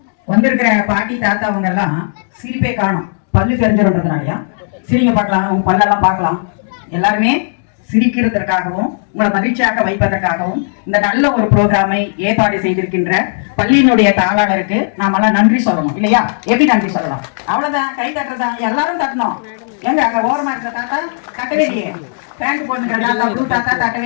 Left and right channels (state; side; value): silent; right; digital silence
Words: வந்திருக்கிற பாட்டி தாத்தா அவங்க எல்லாம் சிரிப்பே காணும், பல்லு தெரிஞ்சிருன்றதுனாலயா சிரிங்க பார்க்கலாம், உங்க பல்லெல்லாம் பார்க்கலாம். எல்லாருமே சிரிக்கிறதற்காகவும் உங்களை மகிழ்ச்சியாக வைப்பதற்காகவும் இந்த நல்ல ஒரு ப்ரோக்ராமை ஏற்பாடு செய்திருக்கின்ற பள்ளியினுடைய தாளாளருக்கு நாமெல்லாம் நன்றி சொல்லணும் இல்லையா? எப்படி நன்றி சொல்லலாம்? அவ்வளவுதான், கை தட்டுறதா, எல்லாரும் தட்டணும். எங்க அங்க ஓரமா இருக்கிற தாத்தா தட்டவே இல்லையே, பேண்ட் போட்டுக்கிற தாத்தா ப்ளூ தாத்தா தட்டவே